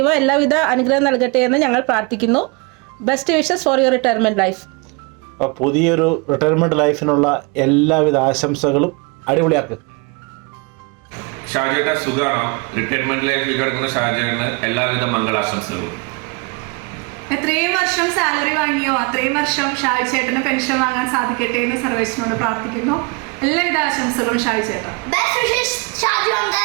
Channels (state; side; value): quieter; left; 30.3 dB